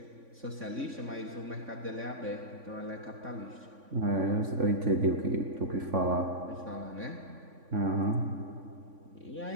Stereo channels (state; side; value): late; left; 3.5 ms